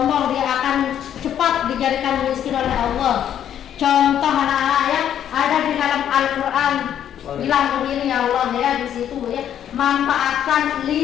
dia akan cepat dijadikan miskin oleh Allah. Contoh anak-anak ya, ada di dalam Al-Quran bilang begini ya Allah ya, di situ ya, manfaatkan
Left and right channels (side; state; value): right; quieter; 10.0 dB